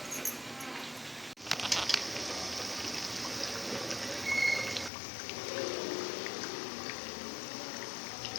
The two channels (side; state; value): right; drops out; at 4.9 s